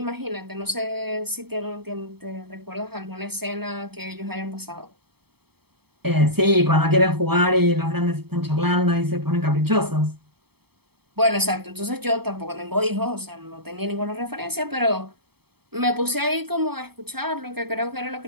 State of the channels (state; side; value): late; left; 0.97 ms